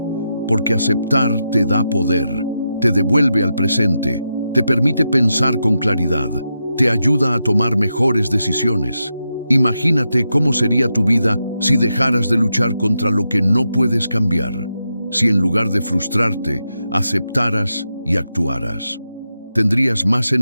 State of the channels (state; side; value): inverted; both; correlation -0.87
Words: porque aceptar te da poder, te devuelve al presente, te permite pensar con claridad, te ayuda a tomar mejores decisiones. Imagínate cómo sería tu vida si dejaras de luchar contra lo que no puedes cambiar, si en lugar de frustrarte, aceptaras y actuaras. Tendrías más